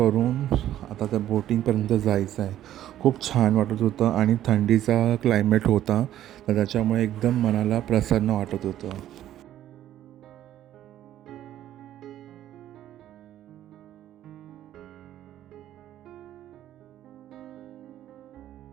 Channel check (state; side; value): quieter; left; 12.3 dB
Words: आता त्या बोटिंगपर्यंत जायचं आहे. खूप छान वाटत होतं आणि थंडीचा क्लायमेट होता, तर त्याच्यामुळे एकदम मनाला प्रसन्न वाटत होतं.